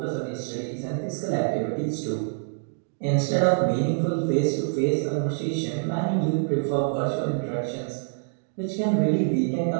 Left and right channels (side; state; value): left; silent; 61 dB below the other